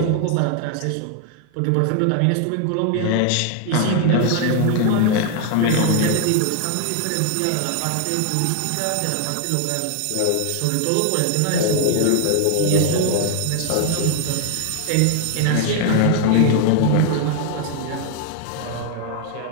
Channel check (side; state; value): both; different; correlation 0.00